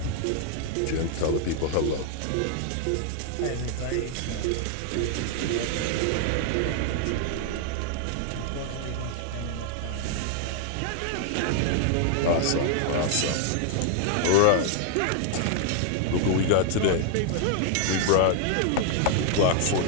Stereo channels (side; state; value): both; different; correlation 0.00